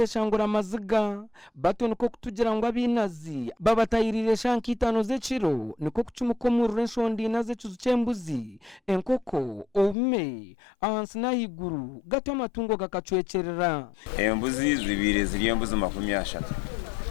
amaziga bato niko kutugira ngo abinazi babatayirire shankitano z'eciro niko kucumukomurura enshondi naze cyembuzi enkoko ome ahansi nahiguru gato amatungo gakacwecerera embuzi zibiri ziri embuzi 30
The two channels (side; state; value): right; drops out; at 10.0 s